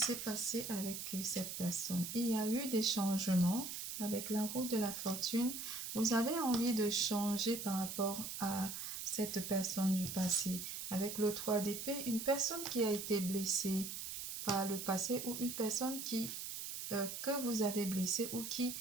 passé avec cette personne? Il y a eu des changements avec la roue de la fortune. Vous avez envie de changer par rapport à cette personne du passé. Avec le 3 d'épée, une personne qui a été blessée par le passé ou une personne que vous avez blessé ou qui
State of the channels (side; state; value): right; noise; hiss, 6 dB below the sound